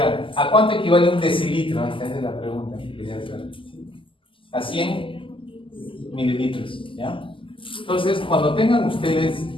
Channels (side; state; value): right; late; 0.25 ms